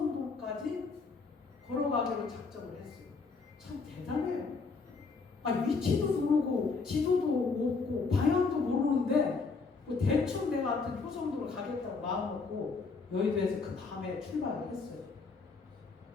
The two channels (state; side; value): quieter; right; 4.5 dB